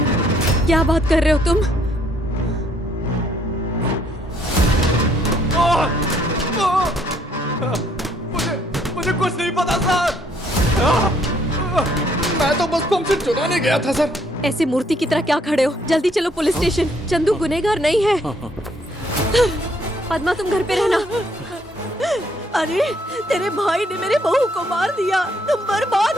क्या बात कर रहे हो तुम? मुझे कुछ नहीं पता सर। मैं तो बस पंप सेट चुराने गया था सर। ऐसे मूर्ति की तरह क्या खड़े हो? जल्दी चलो पुलिस स्टेशन। चंदू गुनहगार नहीं है। पद्मा तुम घर पे रहना। अरे तेरे भाई ने मेरे बहू को मार दिया, तुम बर्बाद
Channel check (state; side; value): normal; both; correlation 0.67